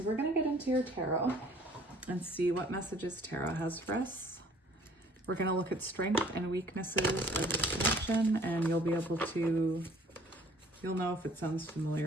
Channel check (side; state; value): both; normal; correlation 0.55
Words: we're going to get into your tarot and see what messages tarot has for us. We're going to look at strength and weaknesses of this connection, and you'll be able to, you'll know if it sounds